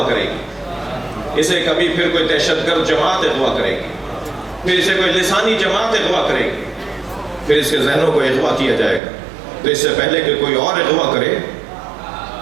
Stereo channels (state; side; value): drops out; left; at 9.0 s